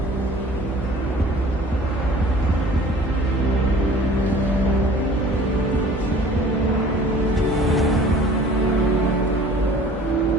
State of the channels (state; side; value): normal; both; correlation 0.48